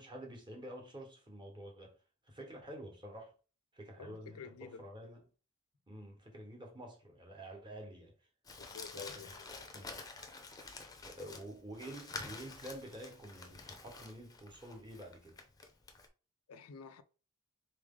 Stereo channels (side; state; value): both; normal; correlation 0.36